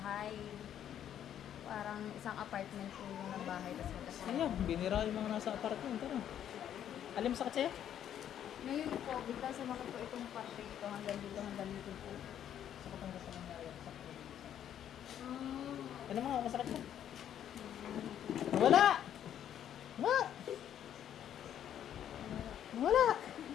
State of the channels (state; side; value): quieter; right; 10.1 dB